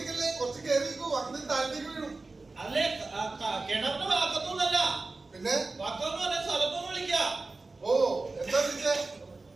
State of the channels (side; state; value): left; quieter; 3.5 dB